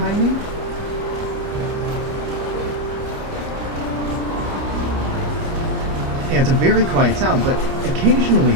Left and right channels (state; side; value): late; left; 30 ms